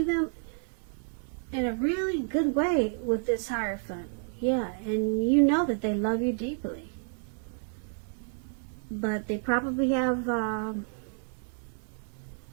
them in a really good way with this Hierophant. Yeah, and you know that they love you deeply. But they probably have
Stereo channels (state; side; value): silent; left; 58 dB below the other